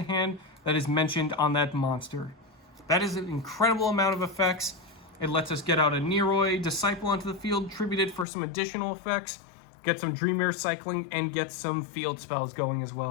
hand that is mentioned on that monster. That is an incredible amount of effects. It lets us get out a YuGiOh Disciple onto the field, tribute it for some additional effects, get some Dream Mirror cycling, and get some field spells going as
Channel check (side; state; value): right; drops out; at 8.2 s